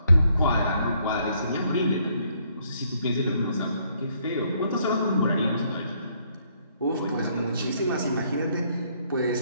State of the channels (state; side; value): inverted; both; correlation -0.69